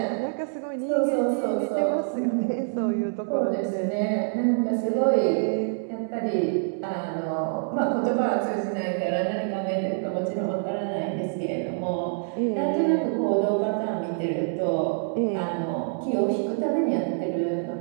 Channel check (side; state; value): left; silent; digital silence